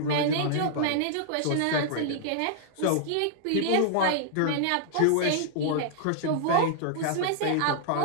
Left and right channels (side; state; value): both; different; correlation -0.01